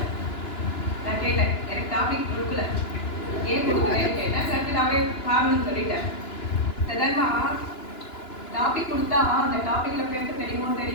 நான் கேட்டேன், எனக்கு டாபிக் கொடுக்கல, ஏன் கொடுக்குறேன்னு கேட்டேன். கரெக்டாகவே காரணம் சொல்லிட்டேன். சாதாரணமா டாபிக் கொடுத்தா அந்த டாபிக்ல பேச தெரியுமோ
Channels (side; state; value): right; late; 2.9 ms